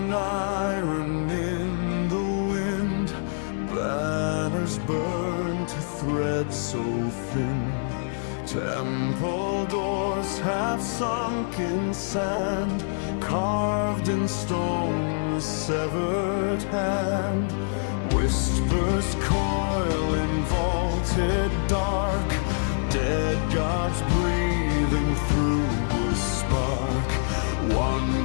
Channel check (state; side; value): silent; right; 61 dB below the other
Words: iron in the wind, banners burn to threads so thin. Temple doors half sunk in sand, carved in stone a severed hand. Whispers coil in vaulted dark, dead gods breathing through a spark.